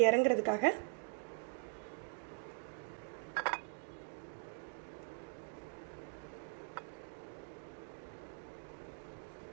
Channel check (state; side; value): silent; left; digital silence